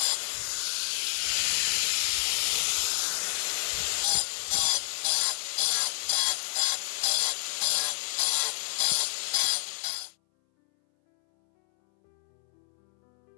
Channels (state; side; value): silent; right; 59 dB below the other